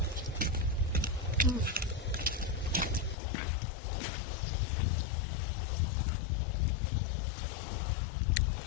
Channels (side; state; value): right; drops out; at 3.2 s